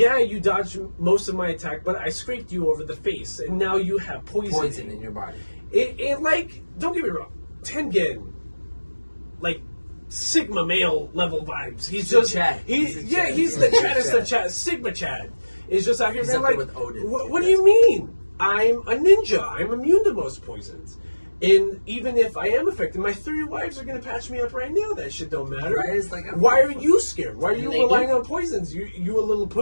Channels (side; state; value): both; inverted; correlation -1.00